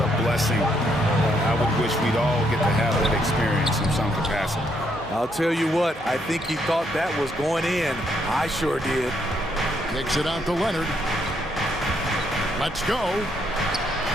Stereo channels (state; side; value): normal; both; correlation 0.74